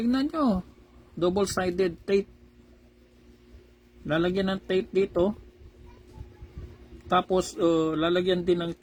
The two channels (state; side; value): identical; both; correlation 1.00